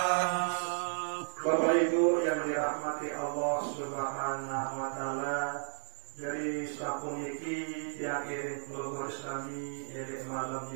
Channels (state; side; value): silent; left; digital silence